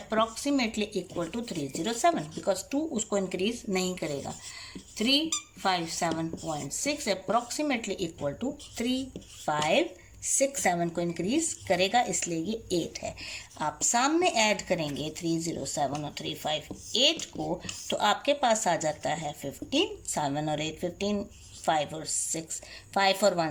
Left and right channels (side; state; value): both; identical; correlation 1.00